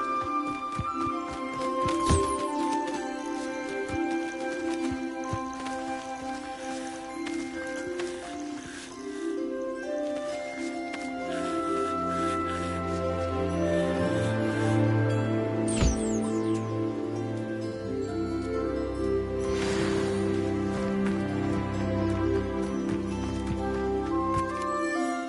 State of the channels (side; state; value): both; identical; correlation 1.00